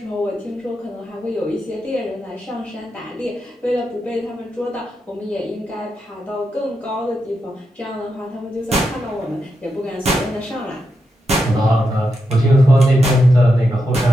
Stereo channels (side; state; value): both; normal; correlation 0.85